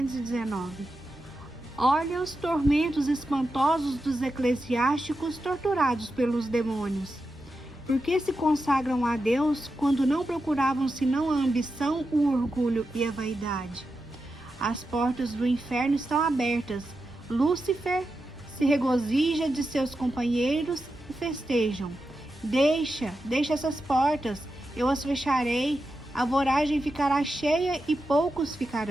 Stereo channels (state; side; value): normal; both; correlation 0.89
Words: Olha os tormentos espantosos dos eclesiásticos torturados pelos demônios. Por que se consagram a Deus quando não procuravam senão a ambição, o orgulho e a vaidade? As portas do inferno estão abertas. Lúcifer se regozija de seus companheiros e festejam. Deixa essas portas, eu as fecharei, a voragem ficará cheia e poucos